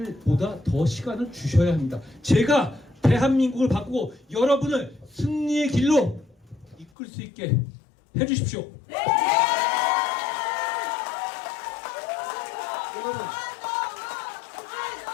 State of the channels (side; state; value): right; drops out; at 6.9 s